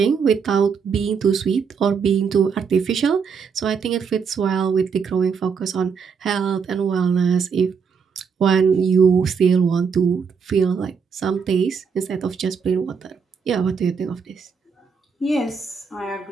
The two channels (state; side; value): quieter; left; 6.0 dB